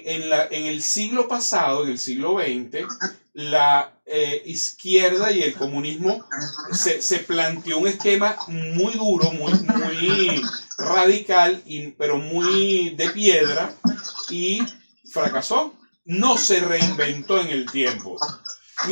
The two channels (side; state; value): both; inverted; correlation -1.00